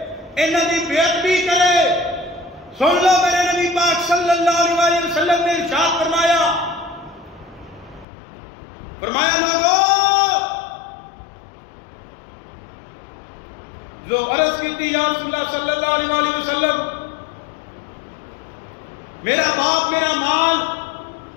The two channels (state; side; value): drops out; right; at 8.1 s